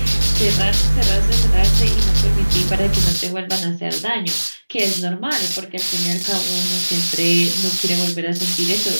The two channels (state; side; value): inverted; both; correlation -1.00